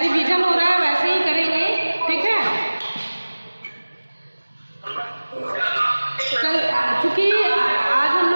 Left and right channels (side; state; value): both; inverted; correlation -1.00